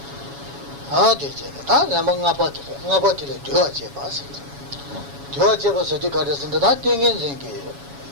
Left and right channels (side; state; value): left; late; 7.1 ms